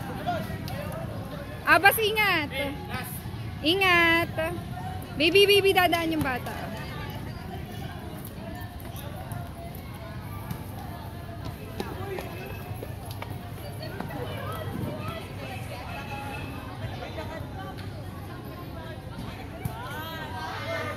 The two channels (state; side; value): identical; both; correlation 1.00